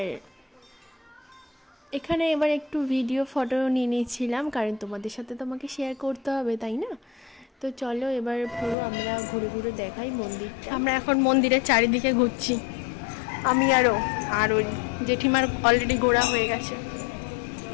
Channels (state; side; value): drops out; right; at 8.8 s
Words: এখানে একটু ভিডিও ফটো নিয়ে নিয়েছিলাম, কারণ তোমাদের সাথে তো আমাকে শেয়ার করতে হবে তাই না। তো চলো এবার পুরো আমরা ঘুরে ঘুরে দেখাই মন্দিরটা। আমরা এখন মন্দিরের চারিদিকে ঘুরছি, আমি আর ওই জেঠিমার অলরেডি ঘোরা হয়ে গেছে।